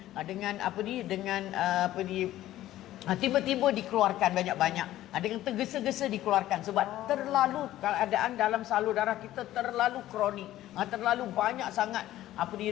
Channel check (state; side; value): quieter; right; 14.2 dB